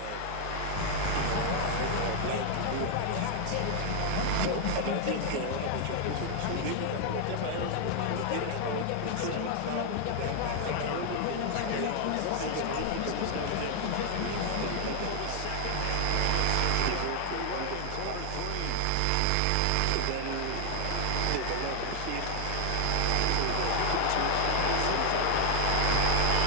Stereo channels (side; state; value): both; different; correlation 0.00